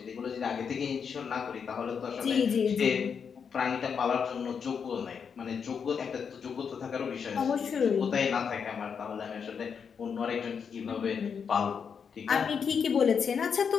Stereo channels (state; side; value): quieter; right; 6.6 dB